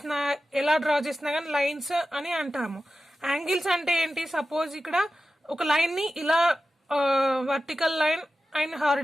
చేసినా కానీ లైన్స్ అని అంటాము. యాంగిల్స్ అంటే ఏంటి? సపోజ్ ఇక్కడ ఒక లైన్ని ఇలా vertical line and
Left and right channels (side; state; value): both; normal; correlation 0.93